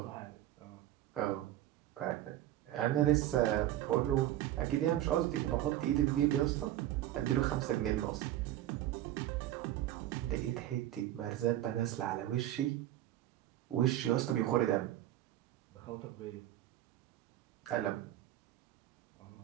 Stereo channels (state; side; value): quieter; left; 13.6 dB